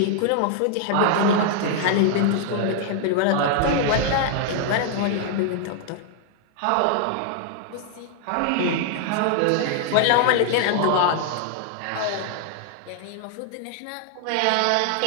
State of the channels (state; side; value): different; both; correlation 0.00